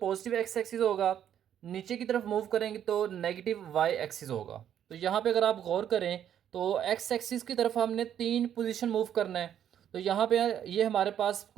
एक्स एक्सिस होगा, नीचे की तरफ मूव करेंगे तो नेगेटिव वाई एक्सिस होगा। तो यहाँ पे अगर आप गौर करें तो एक्स एक्सिस की तरफ हमने 3 पोजीशन मूव करना है। तो यहाँ पे ये हमारे पास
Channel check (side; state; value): left; quieter; 9.9 dB